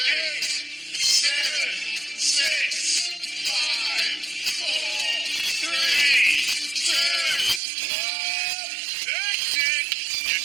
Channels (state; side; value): drops out; left; at 7.6 s